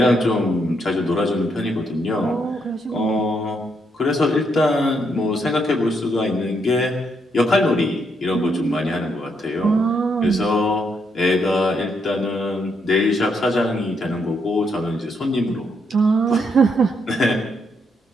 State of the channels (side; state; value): both; normal; correlation 0.77